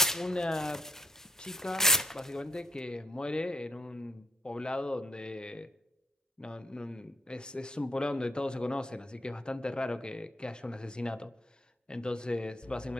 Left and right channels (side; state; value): both; normal; correlation 0.71